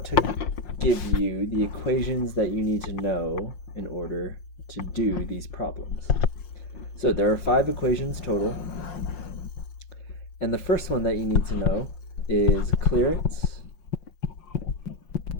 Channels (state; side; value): late; right; 5.6 ms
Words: to give you the equations that you need to know in order to do these problems. So there are 5 equations total, and the first one that you need to know is clearance